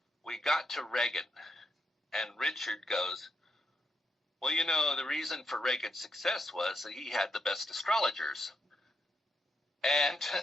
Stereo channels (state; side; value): normal; both; correlation 0.80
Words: We got to Reagan, and Richard goes, well, you know, the reason for Reagan's success was that he had the best astrologers. And